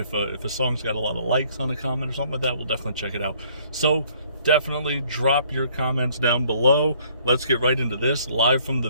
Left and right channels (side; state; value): both; inverted; correlation -0.61